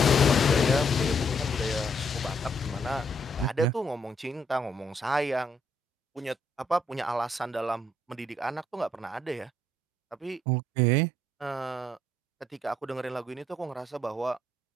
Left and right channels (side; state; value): both; normal; correlation 0.70